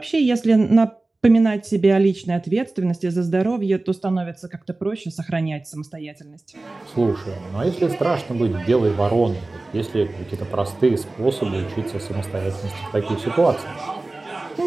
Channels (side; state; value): left; quieter; 3.1 dB